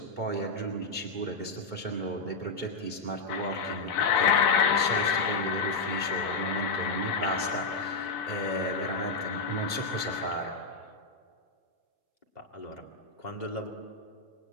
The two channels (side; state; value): right; quieter; 4.0 dB